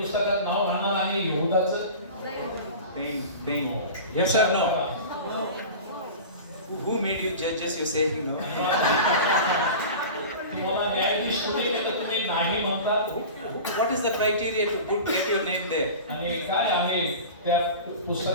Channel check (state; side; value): inverted; both; correlation -0.34